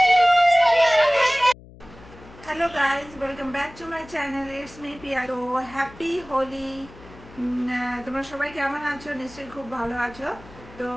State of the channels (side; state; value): left; noise; hum, 20 dB below the sound